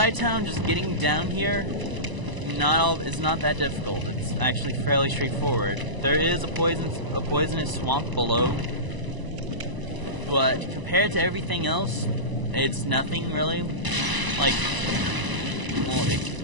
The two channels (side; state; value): left; late; 1.0 ms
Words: just getting down here, it's not that difficult. It's actually fairly straightforward. There is a poisonous swamp below, but compared to everything else, it's nothing really. Like, well, it